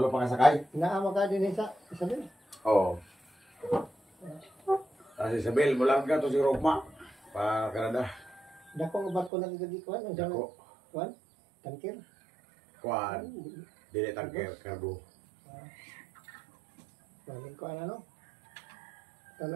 pa ka sakay? Naama ka din sa sabi. Oo. Kasi Isabel, mula ka to si Rogma. Pa Canada. Dako ba ko nagdadi kuan? Ang Dako. kuan? Tangkir. Kuan. Dili tangker, karbo. Balik ko ano?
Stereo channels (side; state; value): left; drops out; at 9.3 s